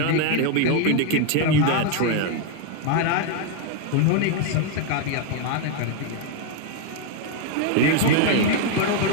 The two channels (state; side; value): different; both; correlation 0.01